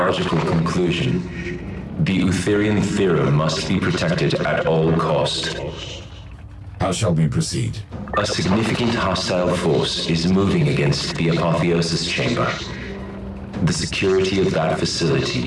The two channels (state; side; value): identical; both; correlation 1.00